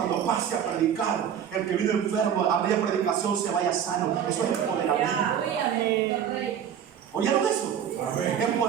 pase a predicar, el que vino enfermo a media predicación se vaya sano. Eso es empoderamiento. ¿Oyeron eso?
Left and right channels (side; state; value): left; quieter; 8.8 dB